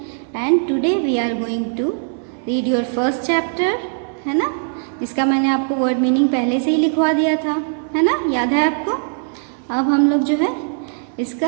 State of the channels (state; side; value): silent; left; 66 dB below the other